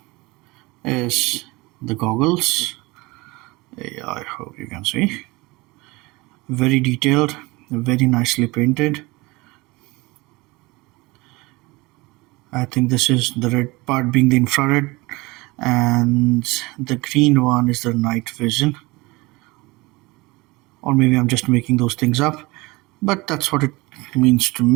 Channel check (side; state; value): left; quieter; 23.0 dB